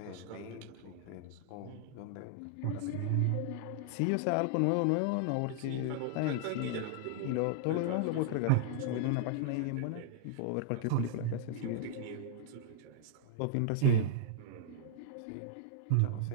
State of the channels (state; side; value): different; both; correlation -0.01